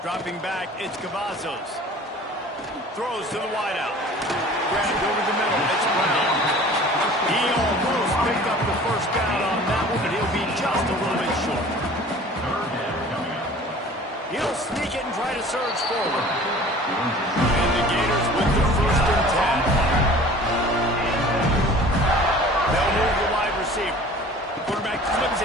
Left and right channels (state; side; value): normal; both; correlation 0.46